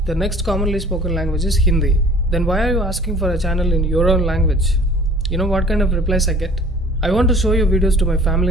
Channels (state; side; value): normal; both; correlation 0.50